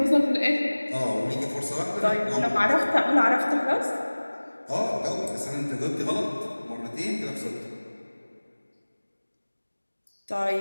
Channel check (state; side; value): inverted; both; correlation -1.00